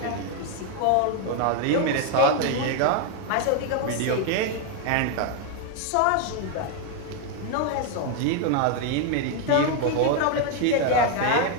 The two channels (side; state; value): both; different; correlation 0.01